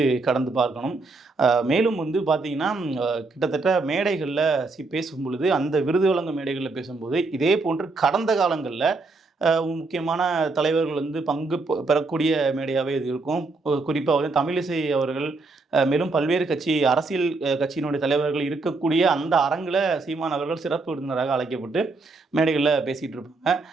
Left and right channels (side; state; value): left; quieter; 3.6 dB